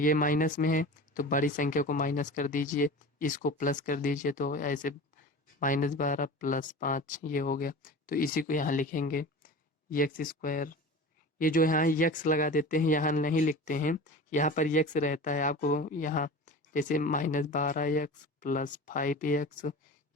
माइनस में है तो बड़ी संख्या को माइनस कर दीजिए, इसको प्लस कर दीजिए, तो ऐसे -12 + 5 ये हो गया। तो इसी को यहाँ लिखेंगे एक्स स्क्वायर। ये जो यहाँ यक्स लगा देते हैं, यहाँ नहीं लिखते हैं, यहाँ पर यक्स रहता है आपको यहाँ, जैसे -12x + 5x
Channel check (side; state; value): both; normal; correlation 0.34